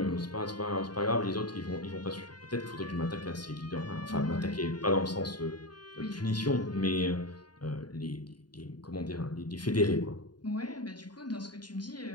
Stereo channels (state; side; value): late; right; 0.70 ms